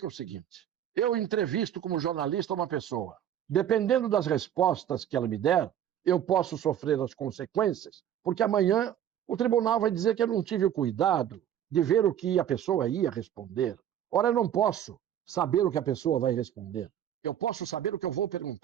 o seguinte: eu entrevisto como jornalista uma pessoa. Dependendo das respostas que ela me der, eu posso sofrer as consequências, porque amanhã o tribunal vai dizer que eu não tive o cuidado de ver o que a pessoa ia responder. Ora, eu não posso saber o que a pessoa vai responder. Eu posso saber o que eu vou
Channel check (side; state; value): left; quieter; 10.4 dB